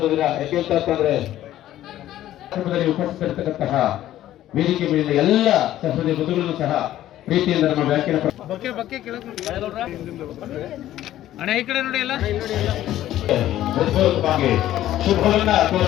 ದಿನ. ಯಾಕೆ ಅಂತಂದ್ರೆ ಉಪಸ್ಥಿತರಿರ್ತಕ್ಕಂತಹ ವೇದಿಕೆ ಮೇಲಿನ ಎಲ್ಲ ಸಹೃದಯ ಬಂಧುಗಳನ್ನು ಸಹ ಪ್ರೀತಿಯಿಂದ ನಮ್ಮ ಬ್ಯಾಂಕಿನ ಹೃತ್ಪೂರ್ವಕವಾಗಿ ಶುಭವನ್ನ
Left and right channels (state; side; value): quieter; right; 13.3 dB